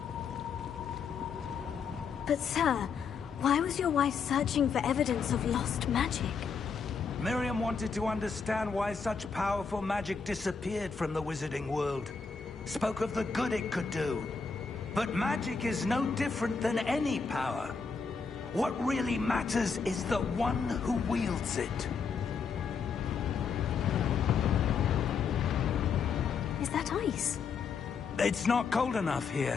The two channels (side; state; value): right; quieter; 5.5 dB